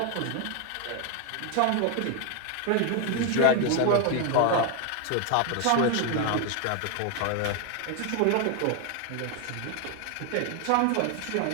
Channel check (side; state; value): both; different; correlation 0.01